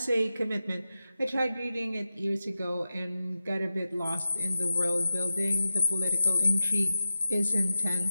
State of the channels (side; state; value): both; inverted; correlation -0.93